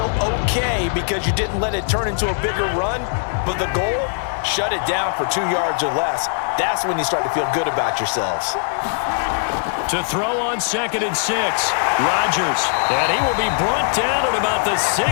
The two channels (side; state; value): right; silent; digital silence